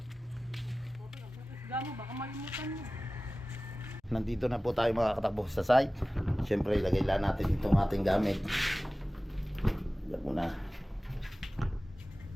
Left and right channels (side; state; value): both; normal; correlation 0.97